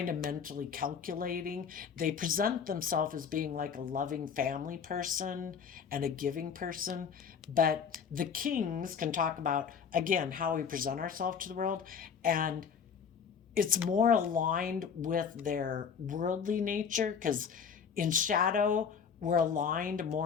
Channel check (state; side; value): quieter; right; 6.7 dB